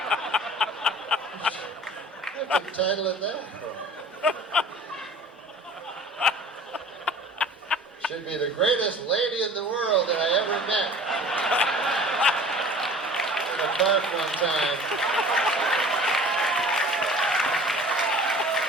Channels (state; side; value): normal; both; correlation 0.45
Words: What's the title of that for? Should be the greatest lady in the world that I ever met. In a park one time.